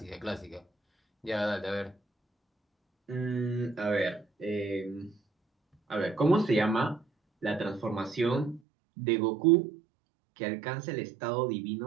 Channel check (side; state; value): left; drops out; at 8.6 s